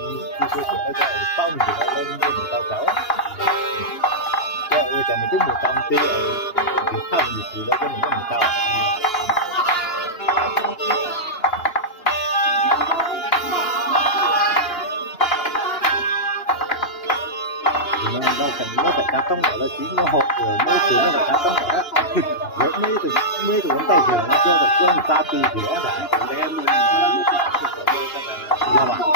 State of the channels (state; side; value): late; right; 2.9 ms